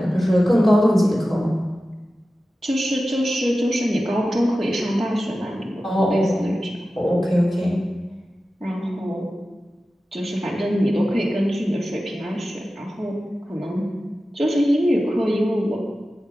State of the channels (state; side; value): normal; both; correlation 0.94